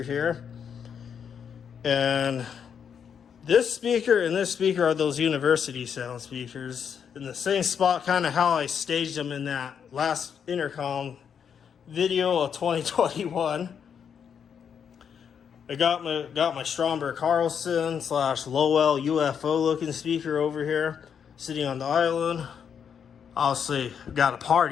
here. And this speaker and this speaker are those university sound speakers. In the same spot, kind of how I staged them in that last Intercom video of 2021. I got my Stromberg Carlson / Lowell UFO looking speaker over here, sitting on the island. Obviously, got a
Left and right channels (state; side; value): quieter; right; 7.5 dB